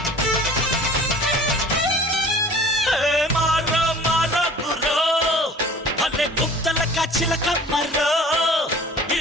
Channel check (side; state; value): both; normal; correlation 0.45